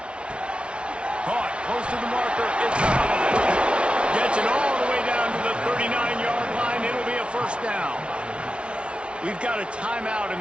Caught close to the marker. It's out of it. Gets it all the way down to the 39-yard line. It'll be a 1st down. We've got a timeout in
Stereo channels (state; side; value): late; left; 0.059 ms